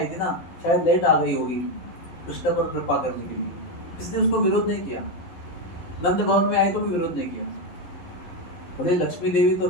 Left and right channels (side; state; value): right; late; 11 ms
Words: थी ना, शायद लेट आ गई होगी कृष्ण पर कृपा करने के लिए। इसने उसको विरोध नहीं किया। नंद भवन में आई तो भी विरोध नहीं किया। बोले लक्ष्मी देवी तो